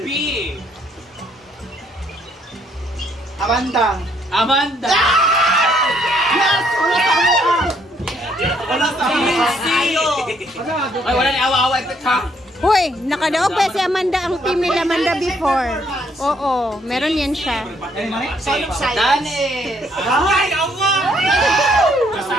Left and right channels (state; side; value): normal; both; correlation 0.68